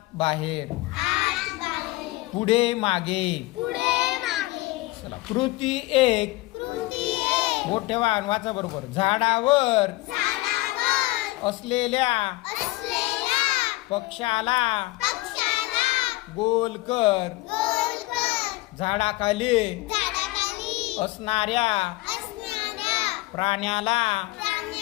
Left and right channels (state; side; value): quieter; right; 20.5 dB